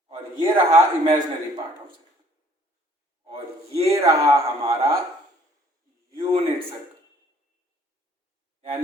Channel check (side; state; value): both; normal; correlation 0.59